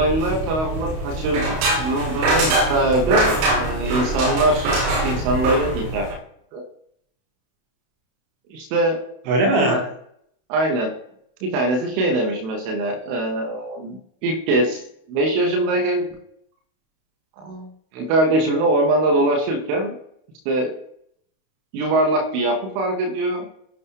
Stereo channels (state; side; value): late; left; 32 ms